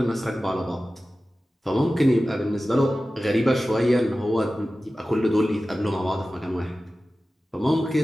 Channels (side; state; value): both; normal; correlation 0.95